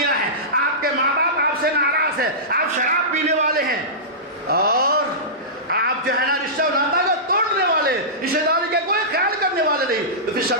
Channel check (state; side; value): normal; both; correlation -0.18